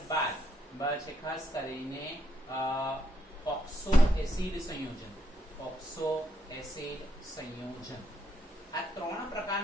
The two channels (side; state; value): both; normal; correlation 0.77